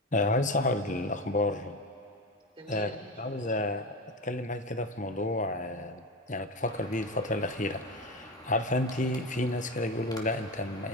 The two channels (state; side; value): normal; both; correlation 0.22